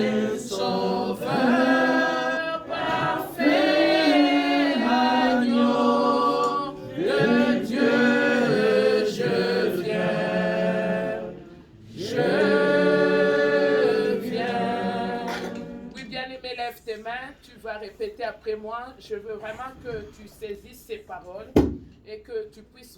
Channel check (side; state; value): both; identical; correlation 1.00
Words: sauveur, parfait, agneau de Dieu, je viens. Oui, bien-aimé, lève tes mains, tu vas répéter après moi. Je veux vraiment que tu saisisses ces paroles et que tu puisses